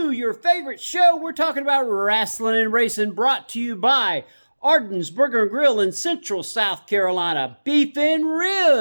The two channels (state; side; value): inverted; both; correlation -1.00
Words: your favorite show. We're talking about wrestling and racing, brought to you by Arden's Burger and Grill in Central South Carolina, Beef and